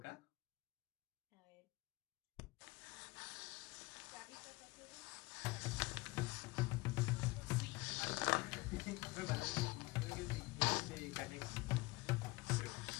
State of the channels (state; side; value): quieter; right; 22.9 dB